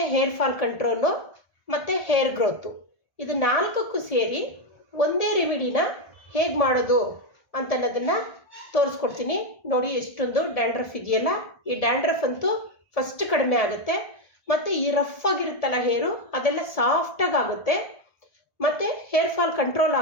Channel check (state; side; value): late; right; 1.4 ms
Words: ಹೇರ್ ಫಾಲ್ ಕಂಟ್ರೋಲು ಮತ್ತು ಹೇರ್ ಗ್ರೋತು, ಇದು ನಾಲ್ಕಕ್ಕೂ ಸೇರಿ ಒಂದೇ ರೆಮಿಡಿನ ಹೇಗೆ ಮಾಡೋದು ಅಂತನ್ನೋದನ್ನು ತೋರಿಸ್ಕೊಡ್ತೀನಿ. ನೋಡಿ ಎಷ್ಟೊಂದು ಡ್ಯಾಂಡ್ರಫ್ ಇದೆಯಲ್ಲ, ಈ ಡ್ಯಾಂಡ್ರಫ್ ಅಂತೂ ಫಸ್ಟ್ ಕಡಿಮೆ ಆಗುತ್ತೆ. ಮತ್ತು ಈ ರಫ್ ಆಗಿರುತ್ತಲ್ಲ ಹೇರು ಅದೆಲ್ಲ ಸಾಫ್ಟಾಗಿ ಆಗುತ್ತೆ, ಮತ್ತು ಹೇರ್ ಫಾಲ್ ಕಂಟ್ರೋಲ್